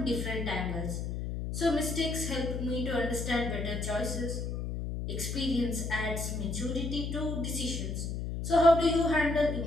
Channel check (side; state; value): left; noise; hum, 3 dB below the sound